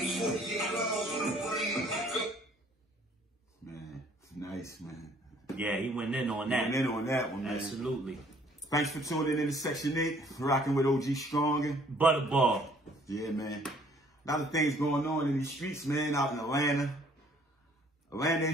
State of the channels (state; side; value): normal; both; correlation 0.59